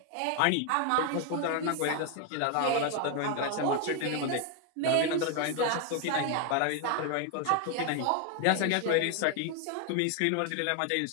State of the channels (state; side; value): different; both; correlation 0.01